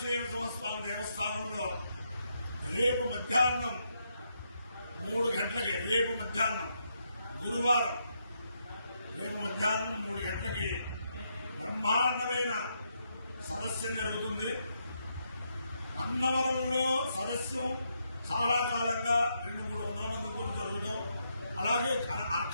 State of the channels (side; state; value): both; inverted; correlation -0.79